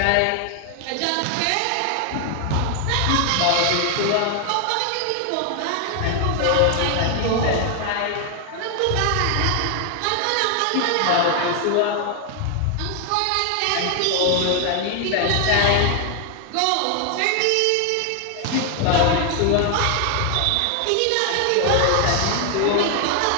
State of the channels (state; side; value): different; both; correlation 0.00